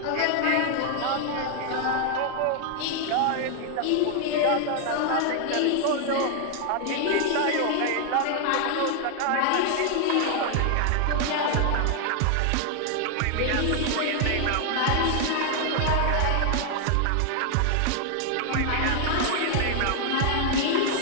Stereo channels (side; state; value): both; different; correlation 0.00